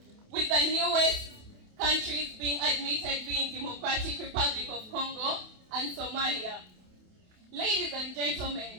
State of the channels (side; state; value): left; late; 28 ms